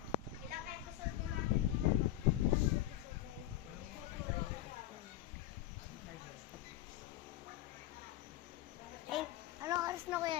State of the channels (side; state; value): right; quieter; 14.2 dB